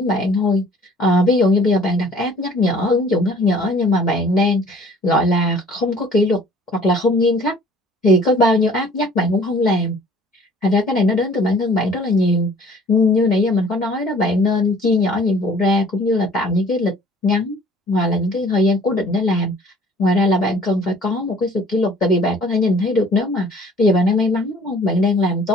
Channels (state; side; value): normal; both; correlation 0.53